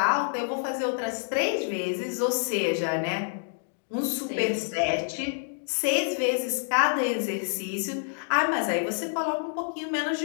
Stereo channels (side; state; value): right; silent; digital silence